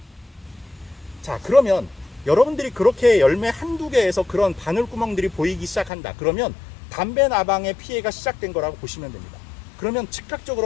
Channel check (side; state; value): right; drops out; at 5.9 s